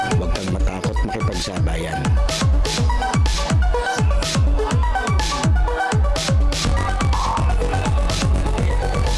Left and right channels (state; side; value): identical; both; correlation 1.00